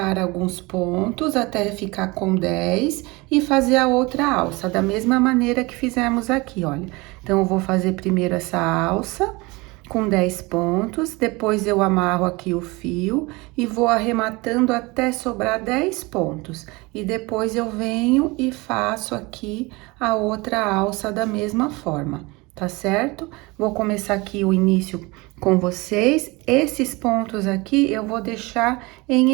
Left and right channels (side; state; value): left; quieter; 24.2 dB